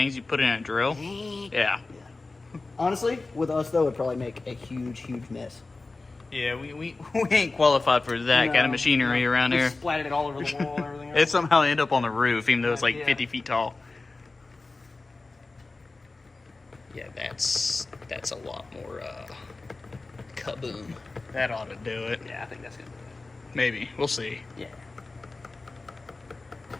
you put in a drill. Yeah. Honestly, with us though, it'd probably make a huge mess. Yeah, we ain't qualified for that kind of machinery around here. We splattered it all over the wall and everything else. It somehow ended up on the roof, even though it's like 50 feet tall. Yeah, that's a lot more kaboom. That ought to do it. Yeah, I think that's gonna do it. Maybe. We'll see. Yeah.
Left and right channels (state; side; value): quieter; right; 3.5 dB